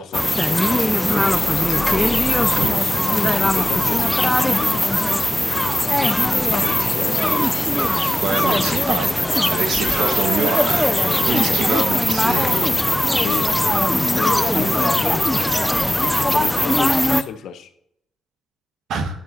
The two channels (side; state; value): both; normal; correlation 0.95